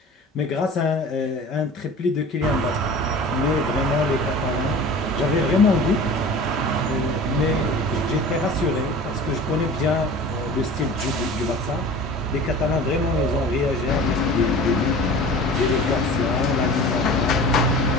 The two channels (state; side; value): normal; both; correlation 0.40